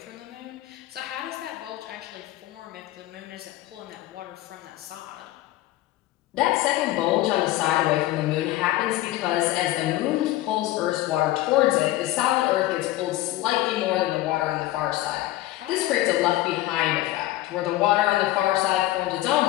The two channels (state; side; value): quieter; right; 16.0 dB